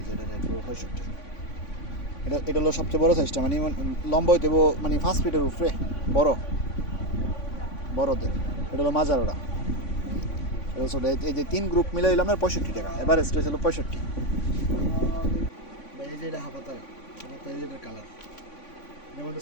যে এটা রেট পড়বে 65। এটা হলো সবচেয়ে বড়ো সাইজটা, মানে লম্বা হইতে মানে 5 ফিটের উপরে বড় বড়দের। এটা হলো মাজারোটা। এটা হচ্ছে এই যে 3 গ্রুপ মিলে হইলো আপনার 65 টাকা, এভারেজ রেট হলো 65। এই যে এটা হাফাতার এই যে এটার কালার, এর মধ্যে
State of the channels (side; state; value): right; late; 3.5 ms